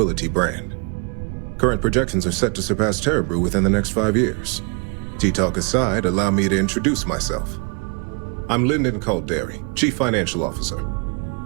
brand. Current projections are set to surpass Terra Brew within the next 5 years. Tea-talk aside, allow me to introduce myself. I'm Lyndon Calderi, Chief Financial Officer.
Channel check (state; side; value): quieter; left; 35.5 dB